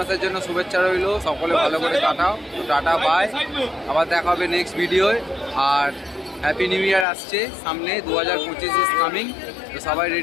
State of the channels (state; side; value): drops out; right; at 7.1 s